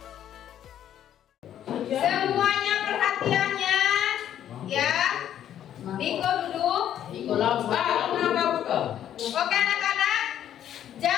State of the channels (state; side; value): quieter; right; 10.6 dB